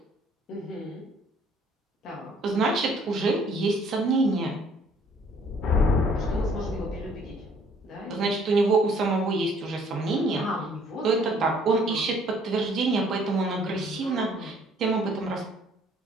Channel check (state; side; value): normal; both; correlation 0.60